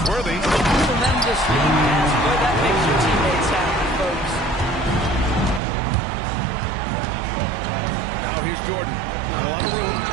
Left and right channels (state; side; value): drops out; left; at 5.6 s